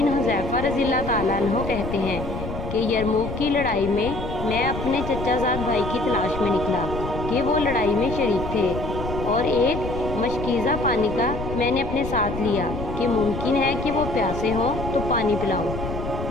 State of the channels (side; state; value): left; noise; rumble, 7 dB below the sound